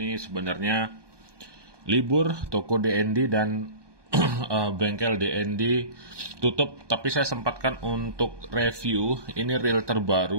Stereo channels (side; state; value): left; late; 1.2 ms